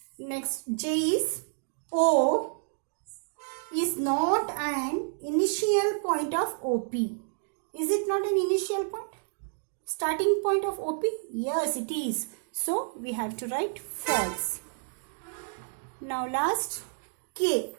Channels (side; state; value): left; silent; digital silence